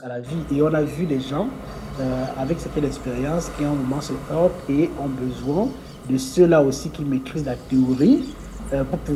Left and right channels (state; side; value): identical; both; correlation 1.00